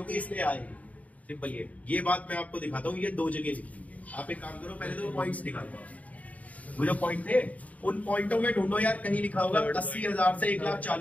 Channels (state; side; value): late; right; 0.070 ms